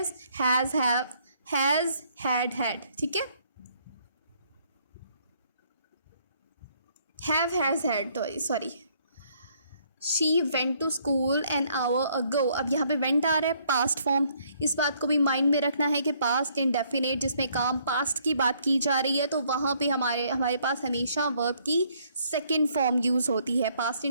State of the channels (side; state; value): both; inverted; correlation -0.66